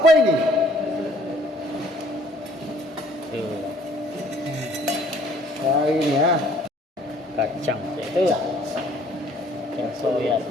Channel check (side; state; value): both; normal; correlation 0.59